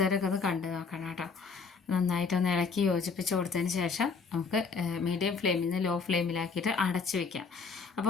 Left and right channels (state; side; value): quieter; right; 5.0 dB